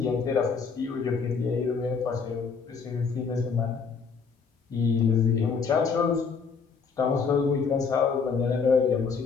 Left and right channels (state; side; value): quieter; right; 5.5 dB